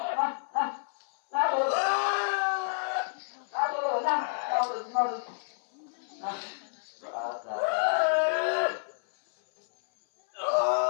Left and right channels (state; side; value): silent; right; 58 dB below the other